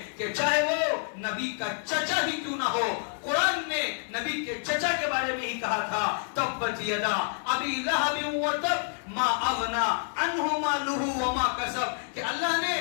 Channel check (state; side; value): silent; right; 59 dB below the other